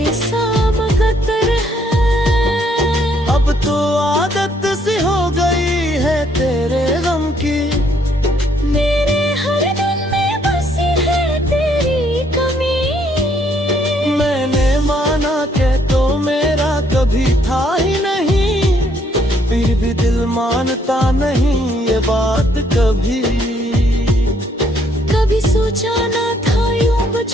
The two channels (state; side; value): normal; both; correlation 0.68